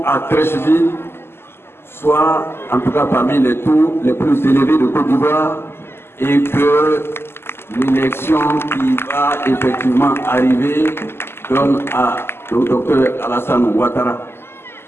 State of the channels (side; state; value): right; late; 0.12 ms